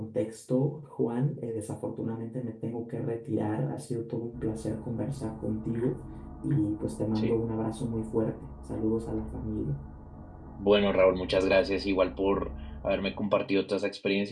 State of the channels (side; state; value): both; identical; correlation 1.00